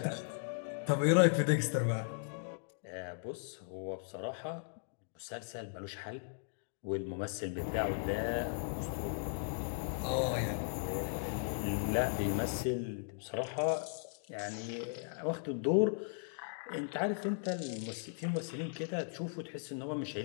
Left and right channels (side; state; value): right; silent; digital silence